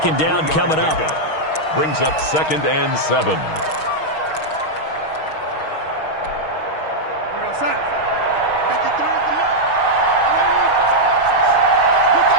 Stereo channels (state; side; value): late; right; 6.4 ms